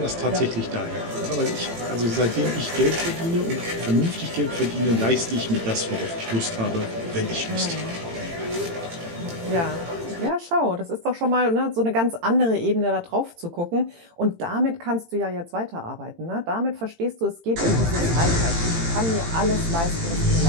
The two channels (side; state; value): left; late; 18 ms